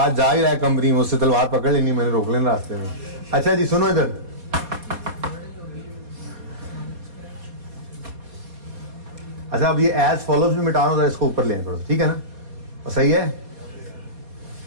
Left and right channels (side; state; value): left; late; 4.2 ms